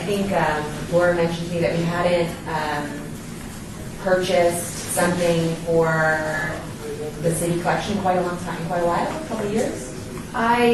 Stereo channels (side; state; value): both; identical; correlation 1.00